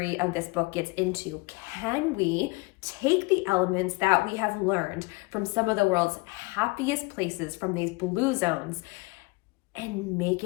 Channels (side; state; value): right; quieter; 25.4 dB